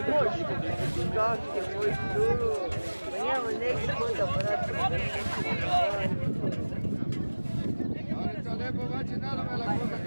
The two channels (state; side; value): inverted; both; correlation -1.00